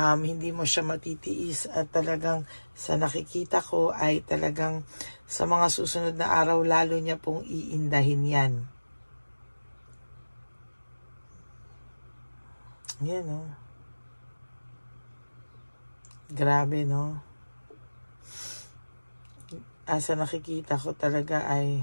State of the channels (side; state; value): both; inverted; correlation -1.00